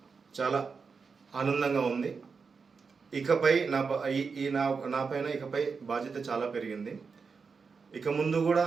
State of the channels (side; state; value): left; quieter; 5.2 dB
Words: చాలా ఆనందంగా ఉంది. ఇకపై నా పైన ఇకపై బాధ్యత చాలా పెరిగింది. ఇక ముందు కూడా